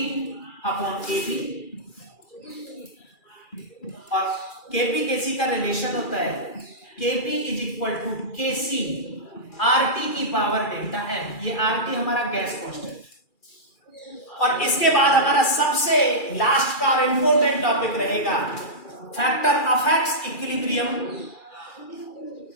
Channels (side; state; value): right; late; 2.4 ms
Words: अपॉन एबी, और केपी केसी का रिलेशन होता है KP is equal to KC RT की पावर डेल्टा एन। ये आरटी हमारा गैस कांस्टेंट। और इसके बाद हमारा सबसे लास्ट का इंपॉर्टेंट टॉपिक रहेगा फैक्टर अफेक्ट्स इक्विलिब्रियम,